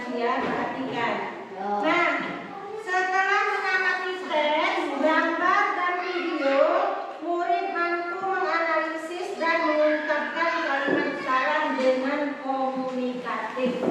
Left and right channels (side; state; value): both; identical; correlation 1.00